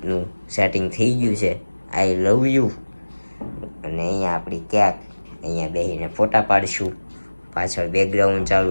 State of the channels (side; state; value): both; inverted; correlation -1.00